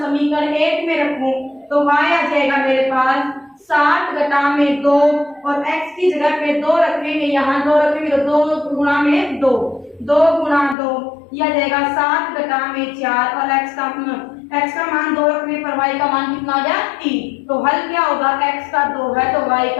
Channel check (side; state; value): right; drops out; at 10.8 s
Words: समीकरण 1 में रखूं तो y आ जाएगा मेरे पास 7 घटा में 2, और x की जगह पे 2 रखेंगे, यहाँ 2 रखेंगे तो 2 गुणा में 2, 2 गुणा 2 यह जाएगा 7 घटा में 4, और x का मान 2 रखने पर y का मान कितना आ गया 3। तो हल क्या होगा, x का 2 है तो y